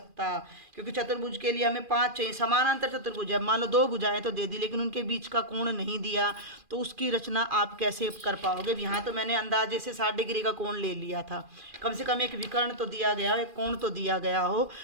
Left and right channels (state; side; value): late; left; 2.4 ms